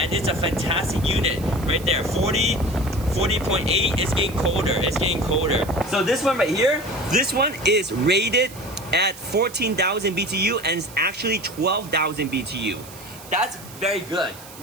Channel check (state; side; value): noise; right; hiss, 18 dB below the sound